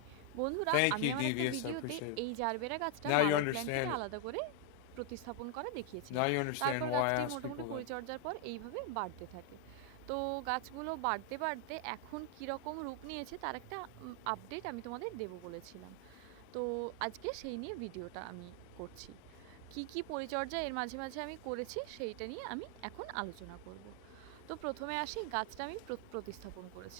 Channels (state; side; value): different; both; correlation 0.00